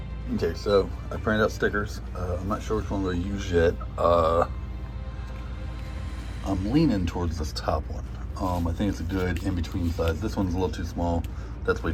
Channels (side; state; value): both; identical; correlation 1.00